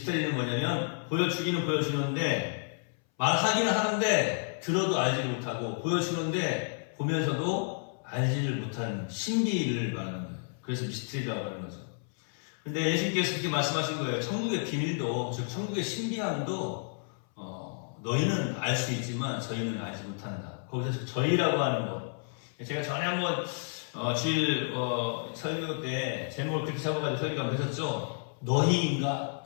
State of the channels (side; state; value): right; silent; 57 dB below the other